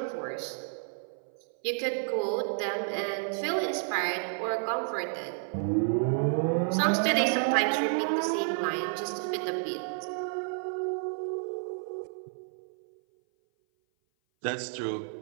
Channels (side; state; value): left; silent; 56 dB below the other